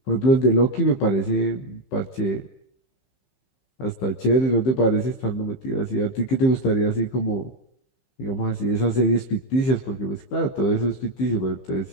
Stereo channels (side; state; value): right; late; 15 ms